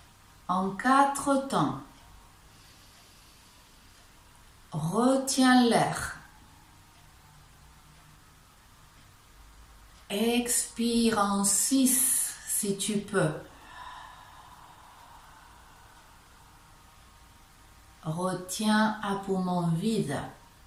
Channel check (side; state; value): both; identical; correlation 1.00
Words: en 4 temps. Retiens l'air. Expire en 6 si tu peux. Retiens à poumon vide.